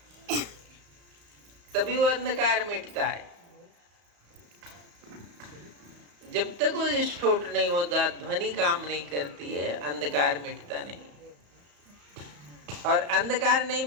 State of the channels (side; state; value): left; late; 34 ms